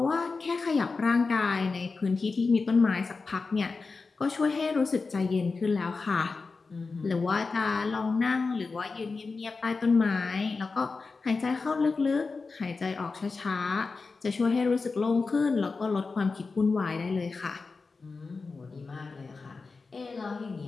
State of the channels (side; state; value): right; quieter; 4.2 dB